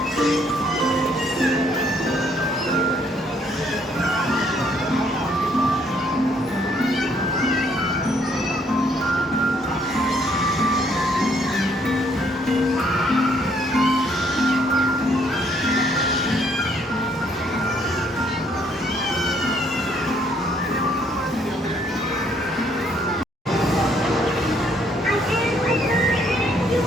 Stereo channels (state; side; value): normal; both; correlation 0.67